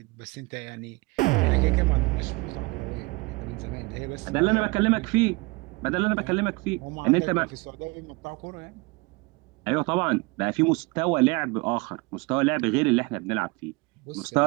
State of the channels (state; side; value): quieter; left; 25.8 dB